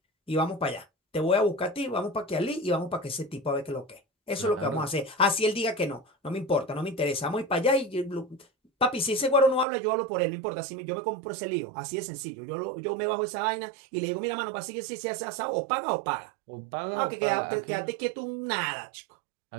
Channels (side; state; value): left; drops out; at 9.7 s